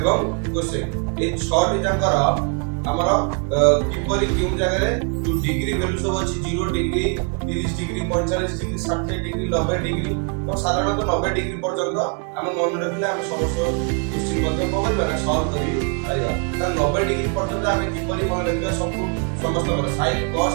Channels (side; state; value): left; quieter; 38.7 dB